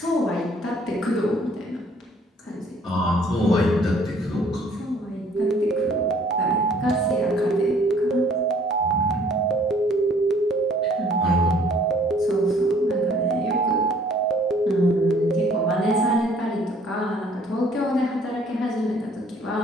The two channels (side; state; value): both; normal; correlation 0.58